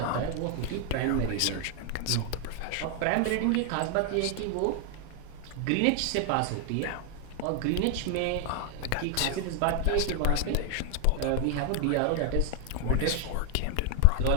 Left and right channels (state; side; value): different; both; correlation 0.00